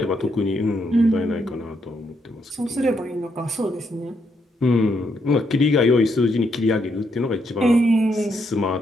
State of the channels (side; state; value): both; normal; correlation 0.77